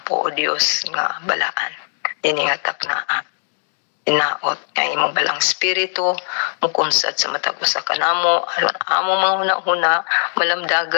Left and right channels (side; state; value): right; silent; digital silence